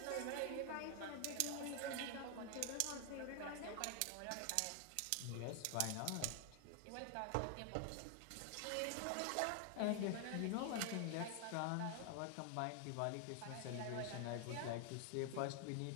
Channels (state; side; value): different; both; correlation 0.00